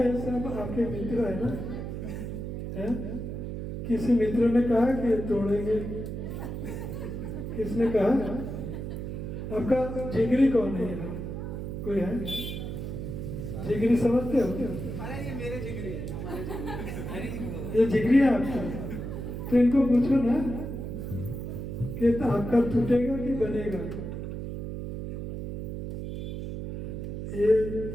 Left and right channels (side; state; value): right; noise; hum, 6 dB below the sound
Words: सब आपके मित्र है ना? है? किसी मित्र ने कहा कि तोड़ेंगे? किसने कहा? आपका जिगरी कौन है यहाँ? कोई है? जिगरी समझते हो? अरे ये मेरे जिगरी है। ये जिगरी है आपका? तो इनको पूछो ना कि तो आपका टूटेगा कि बनेगा? ये